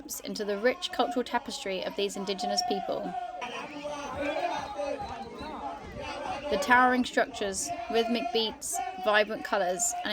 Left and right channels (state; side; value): identical; both; correlation 1.00